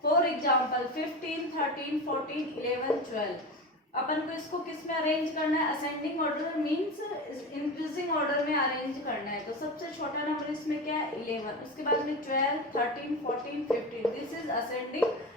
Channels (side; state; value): both; normal; correlation 0.25